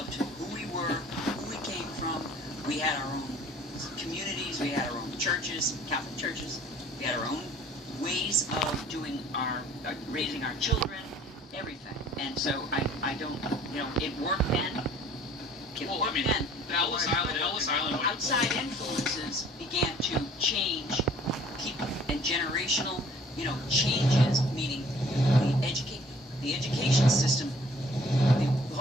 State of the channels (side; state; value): both; normal; correlation 0.54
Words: who we were, who we came from. We had our own communities, we had our own churches, Catholic churches, we had our own ways of doing raising our children, everything. And so I don't, it worked then. The Ellis Island. Outside influences began to change people and generational, changes, meaning the education system, the